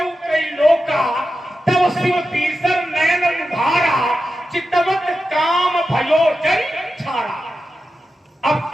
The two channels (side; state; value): both; normal; correlation 0.91